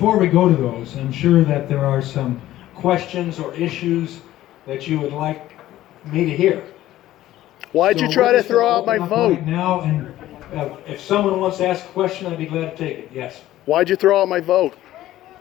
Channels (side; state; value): right; quieter; 14.4 dB